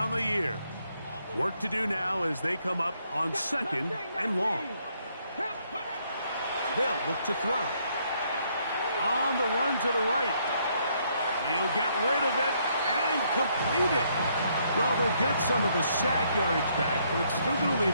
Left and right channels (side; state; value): both; inverted; correlation -0.71